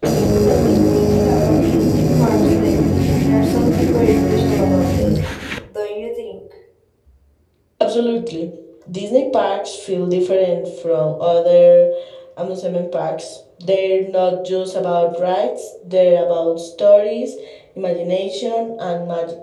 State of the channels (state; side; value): identical; both; correlation 1.00